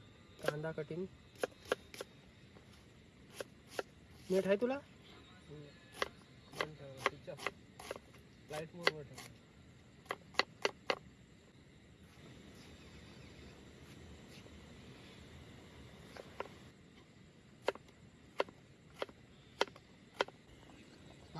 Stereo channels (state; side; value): identical; both; correlation 1.00